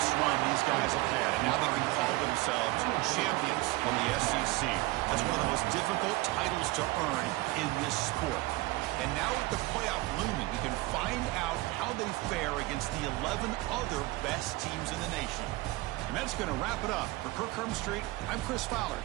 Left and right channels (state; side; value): quieter; left; 20.5 dB